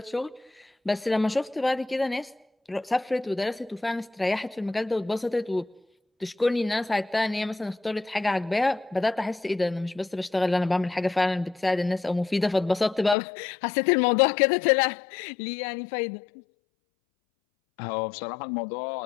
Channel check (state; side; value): drops out; right; at 13.2 s